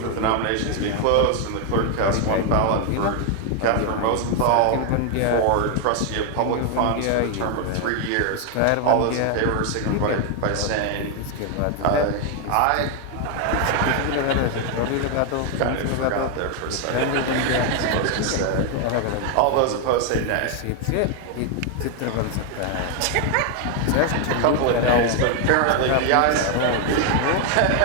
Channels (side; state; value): both; different; correlation 0.00